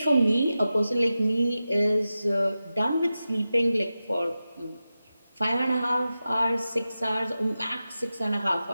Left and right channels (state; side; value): inverted; both; correlation -0.92